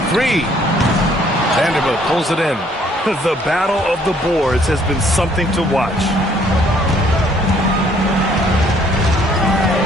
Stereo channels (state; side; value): normal; both; correlation 0.63